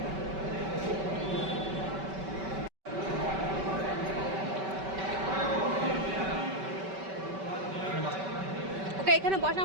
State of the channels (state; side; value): late; left; 5.2 ms